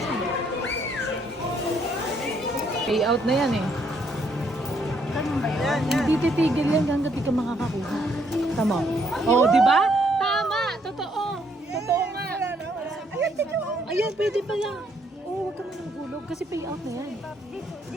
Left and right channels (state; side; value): normal; both; correlation 0.70